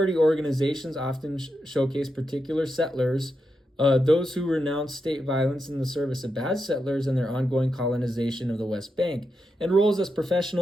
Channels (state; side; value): normal; both; correlation 0.86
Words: organizations often showcase particular settlers, those who renounce state violence in the service of bad settlers and their ongoing colonization of the West Bank, and roles as